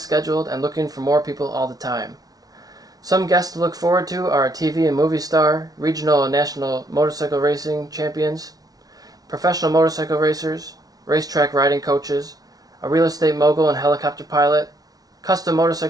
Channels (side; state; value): left; late; 0.18 ms